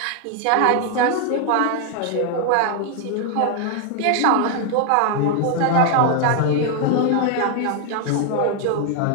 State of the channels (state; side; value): different; both; correlation 0.00